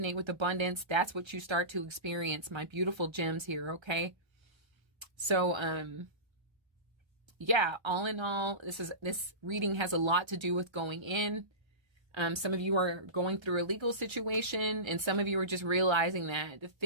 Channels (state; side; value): late; left; 1.3 ms